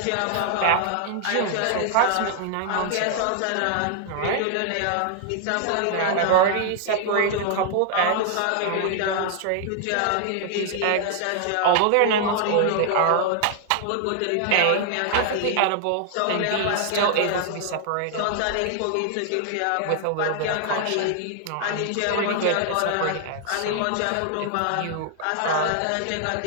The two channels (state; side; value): different; both; correlation -0.01